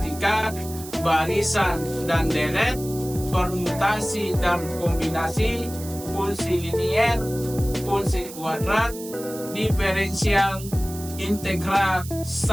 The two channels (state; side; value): noise; right; hiss, 14 dB below the sound